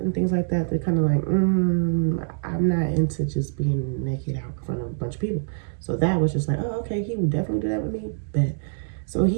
things like that, they're kind of like, I'm not into just being naked out in front of a bunch of people. So that was just like, oh, okay, he would definitely do that with me. But so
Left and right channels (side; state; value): left; silent; digital silence